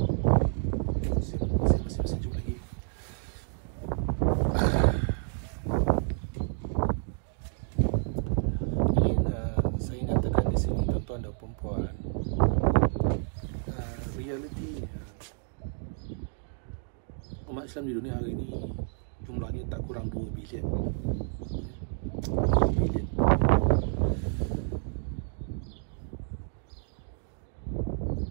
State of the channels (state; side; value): silent; left; 58 dB below the other